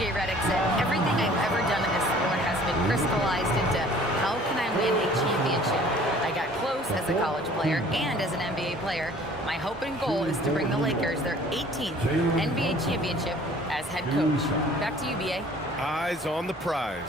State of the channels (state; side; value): normal; both; correlation 0.52